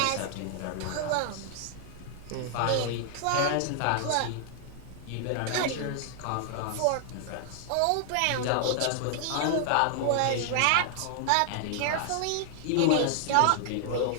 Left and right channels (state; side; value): different; both; correlation 0.00